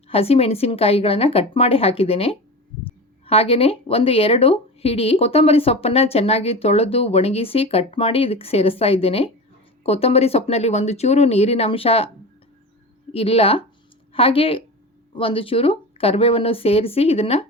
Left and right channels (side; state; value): both; normal; correlation 0.29